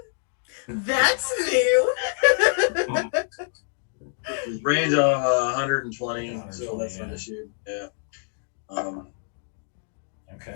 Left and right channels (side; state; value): right; silent; digital silence